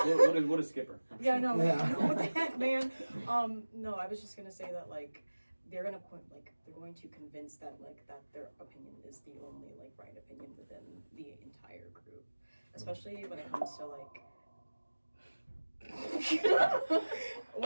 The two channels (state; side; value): inverted; both; correlation -1.00